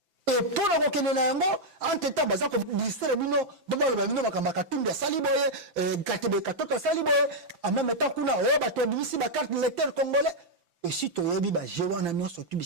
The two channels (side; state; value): left; late; 5.9 ms